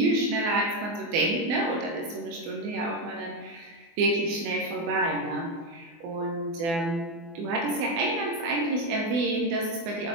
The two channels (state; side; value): late; left; 24 ms